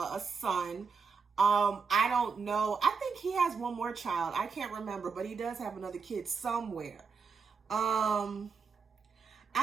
son. I don't know. I think he has one more child. I can't remember, but he does have another kid somewhere. I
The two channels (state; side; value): quieter; left; 5.4 dB